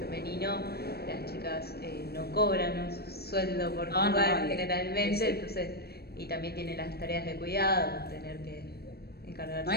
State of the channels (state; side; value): late; right; 0.46 ms